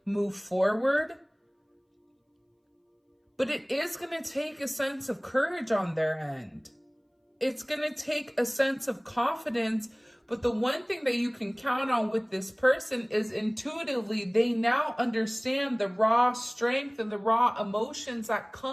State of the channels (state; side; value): identical; both; correlation 1.00